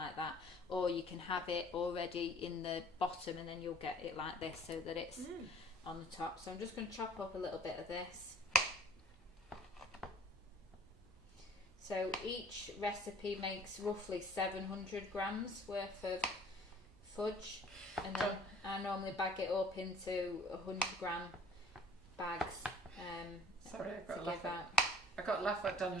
that. Or you can have it already in the bottom and then you'll get it like this so that it's on the top. So I'm just going to chop up a little bit of this. So each recipe makes roughly 700 grams worth of fudge, and then I normally bag it up into 100 gram bags Sorry, to give out. I got a laugh at Donna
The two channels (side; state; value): both; normal; correlation 0.53